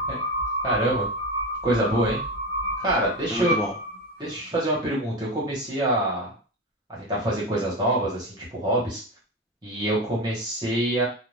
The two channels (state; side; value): normal; both; correlation 0.20